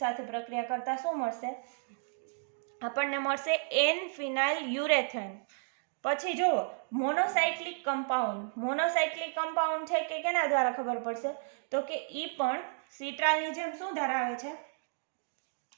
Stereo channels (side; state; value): left; silent; digital silence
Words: સાથે પ્રક્રિયા કરતા શું મળશે? આપણને મળશે N-ફિનાઇલ યુરેથેન. પછી જુઓ મોનોસાયક્લિક કમ્પાઉન્ડ. મોનોસાયક્લિક કમ્પાઉન્ડ છે કે કેના દ્વારા ખબર પડશે? તો કે ઈ પણ સિટ્રાલની જેમ શું ધરાવે છે?